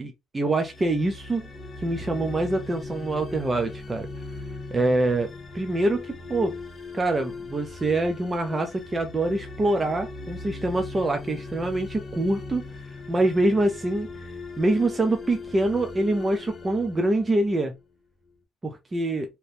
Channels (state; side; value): normal; both; correlation 0.85